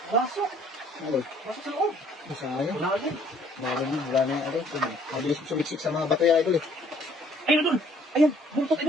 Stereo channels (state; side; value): normal; both; correlation 0.61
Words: Pasok. Idol, Pasok sa loob. masaya. Wala ka dyan. Wala na yung idol. Mabilis sumiksik sa mga bato yan idol eh. Ayun, idol. Ayan, buntot,